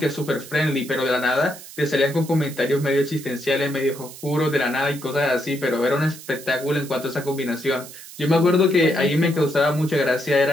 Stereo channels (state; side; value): noise; right; hiss, 16 dB below the sound